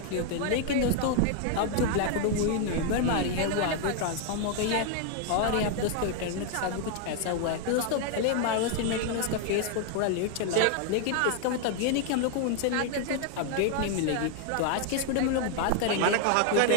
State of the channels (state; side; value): different; both; correlation 0.00